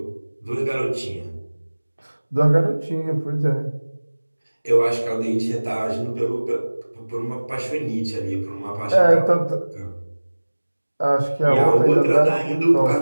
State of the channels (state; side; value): inverted; both; correlation -1.00